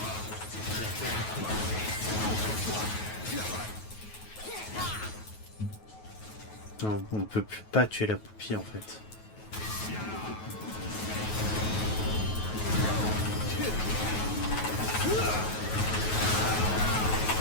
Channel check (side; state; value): right; late; 9.3 ms